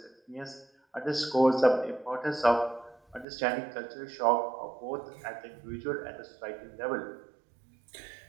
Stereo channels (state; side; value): drops out; left; at 3.2 s